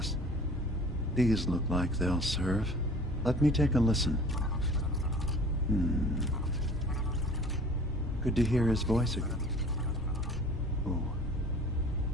These look like they'll serve. Let me take a listen. Good to hear his voice again. Oh.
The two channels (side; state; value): both; normal; correlation 0.47